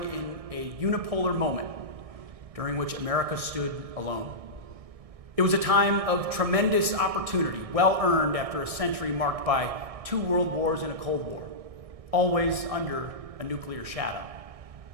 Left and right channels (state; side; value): late; left; 1.6 ms